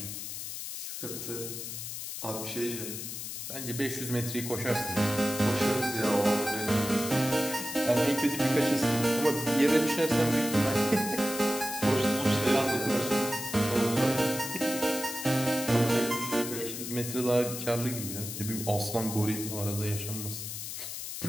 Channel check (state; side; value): noise; left; hiss, 7 dB below the sound